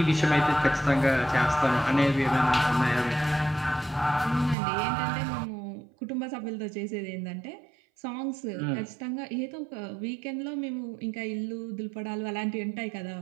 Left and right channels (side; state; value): left; drops out; at 4.5 s